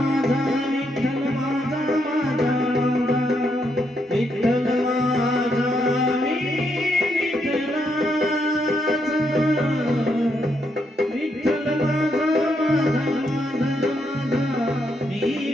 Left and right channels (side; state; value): both; normal; correlation 0.78